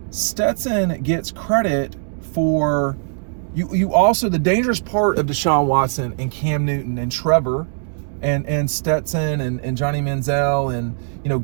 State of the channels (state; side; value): silent; left; 63 dB below the other